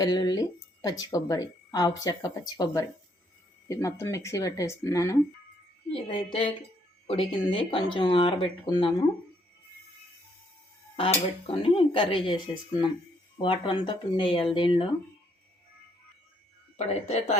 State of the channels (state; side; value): normal; both; correlation 0.70